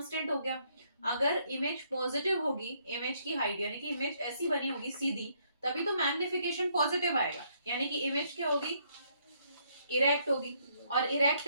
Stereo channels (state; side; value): inverted; both; correlation -0.70